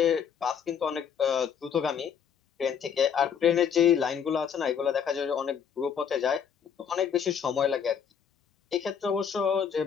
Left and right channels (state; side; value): quieter; right; 7.6 dB